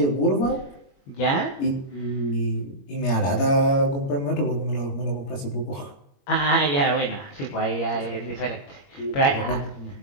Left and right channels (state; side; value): late; right; 21 ms